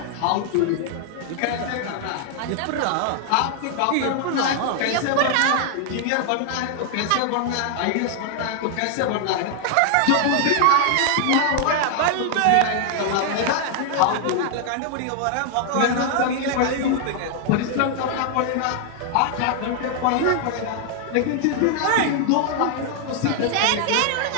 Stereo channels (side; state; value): both; different; correlation 0.00